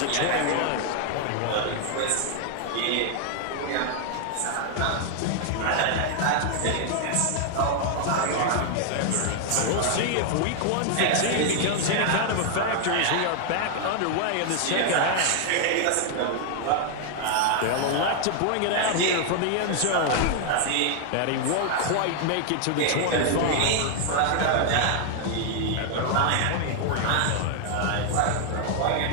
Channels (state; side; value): different; both; correlation 0.00